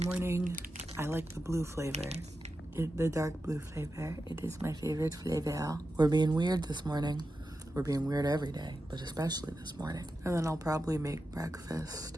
morning. I like the blue flavor. The dark blue flavor. It is my favorite flavor. We're being weird this morning. We're being weird every day, but especially this morning. And then I'll probably make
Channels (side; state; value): both; normal; correlation 0.91